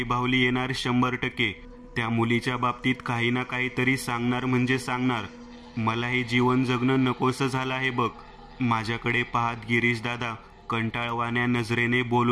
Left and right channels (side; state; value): both; identical; correlation 1.00